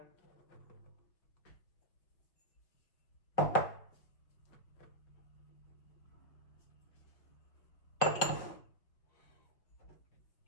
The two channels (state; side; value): late; right; 5.2 ms